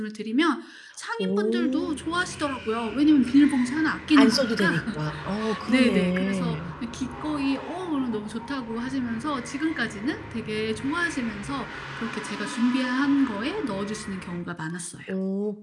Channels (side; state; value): both; identical; correlation 1.00